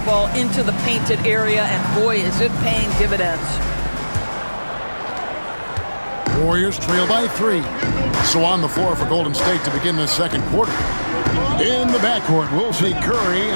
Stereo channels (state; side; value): inverted; both; correlation -1.00